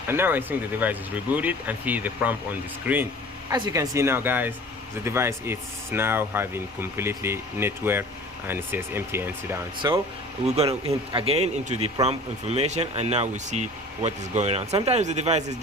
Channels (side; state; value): both; normal; correlation 0.44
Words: and now I think the device is rebooted and see the prompt on the screen. As you can see now guys, the device is now having completely network, and it says MTN down. So we're gonna hit again into the prompt information, and now we see what is going on. Sometimes the device is